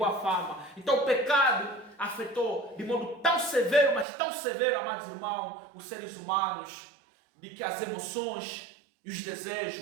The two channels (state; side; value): drops out; left; at 4.0 s